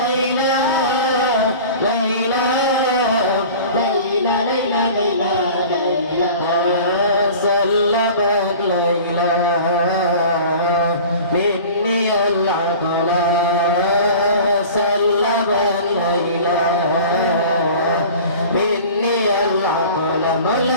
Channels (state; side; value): inverted; both; correlation -0.41